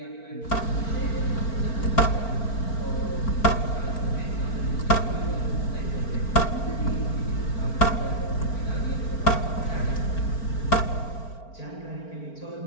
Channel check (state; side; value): late; right; 4.4 ms